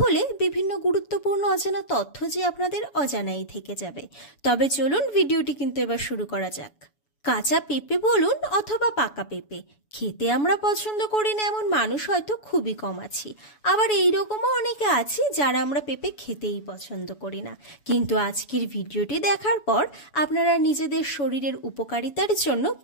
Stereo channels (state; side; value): late; right; 7.0 ms